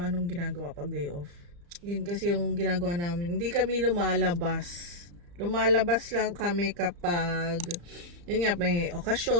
ginagawa pag day off. Yun kasi yung ginagawa namin. Hindi kami lumalabas. Lumalabas lang kami kapag yun nga, may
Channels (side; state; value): left; late; 35 ms